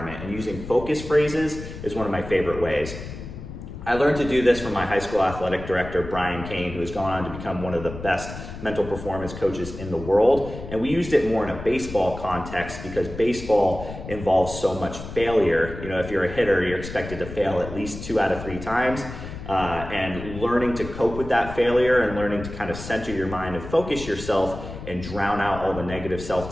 And using focus phrases is one of my favorite ways. I learned to do this from my high school athletic director, Brian Kane, who has gone on to become one of the best mental performance coaches in the world. And we used it more in a baseball context because baseball involves so much failure. You know, if you're a hitter, you're expected to fail at least 2 out of 3 times. And learning to cope with that failure and learning to kind of center your mind and focus yourself and drown out all the negative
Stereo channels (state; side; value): noise; left; rumble, 11 dB below the sound